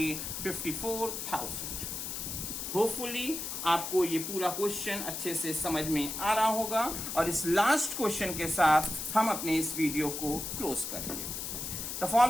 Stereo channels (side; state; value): left; noise; hiss, 5 dB below the sound